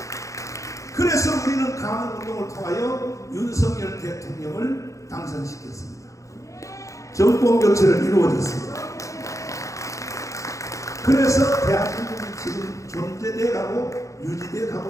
그래서 우리는 강원운동을 통하여 윤석열 대통령을 당선시켰습니다. 정권 교체를 이루어졌습니다. 그래서 대한민국이 지금 존재돼 가고 유지돼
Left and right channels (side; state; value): right; late; 0.15 ms